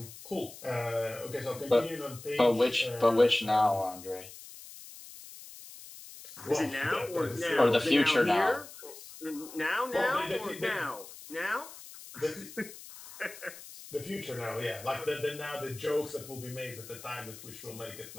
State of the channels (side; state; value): left; noise; hiss, 16 dB below the sound